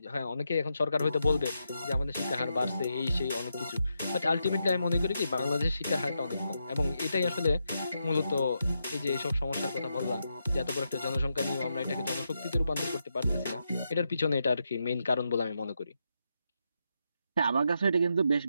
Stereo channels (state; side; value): inverted; both; correlation -0.84